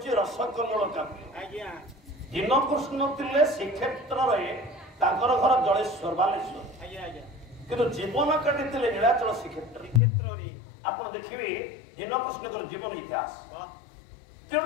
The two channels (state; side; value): drops out; right; at 10.0 s